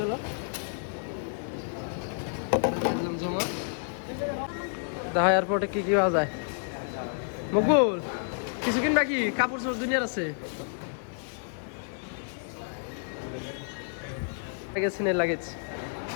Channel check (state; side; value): silent; right; 58 dB below the other